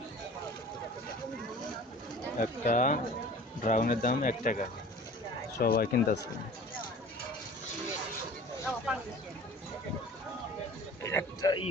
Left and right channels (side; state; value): both; normal; correlation 0.44